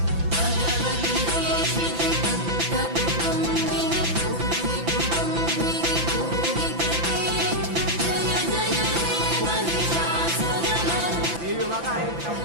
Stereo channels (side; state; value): left; late; 5.9 ms